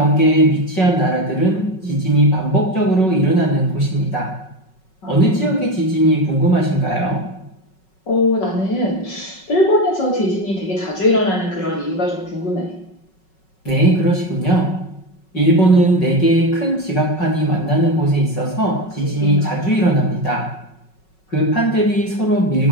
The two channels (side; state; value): right; late; 5.4 ms